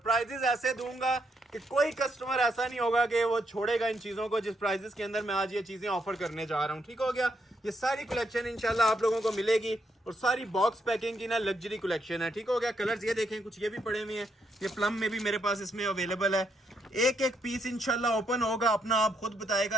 ऐसे दूंगा कि कोई कस्टमर ऐसा नहीं होगा कि वो छोड़ेगा इन चीजों को जिस प्राइजेस के अंदर मैं आज ये चीजें ऑफर करने जा रहा हूँ। ठीक हो गया। ये सारी कलेक्शन इंशाल्लाह आप लोगों को मिलेगी और सारी बॉक्स पैकिंग की ना लग्जरी कलेक्शन है। ठीक हो गया। कलर्स ये देखें, कुछ ये भी पड़े हुए हैं, ये प्लम में भी मेरे पास इसमें अवेलेबल है। एक पीस इंशाल्लाह ओपन होगा, अपना आप खुद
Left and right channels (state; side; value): normal; both; correlation 0.77